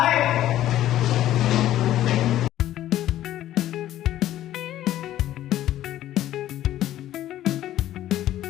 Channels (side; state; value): right; quieter; 13.1 dB